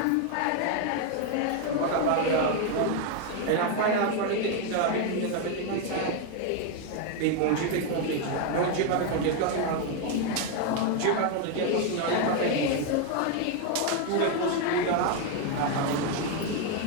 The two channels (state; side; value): different; both; correlation 0.01